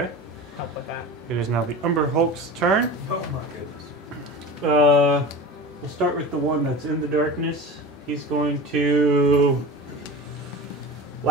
help with that. It is now the Umber Hulk's turn. Oh my goodness. We'll start with the one that's in the darkness. He's going to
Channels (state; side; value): normal; both; correlation 0.32